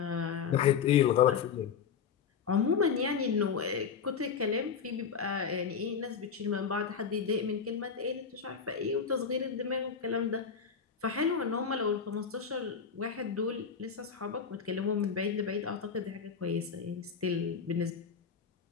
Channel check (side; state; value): right; quieter; 6.6 dB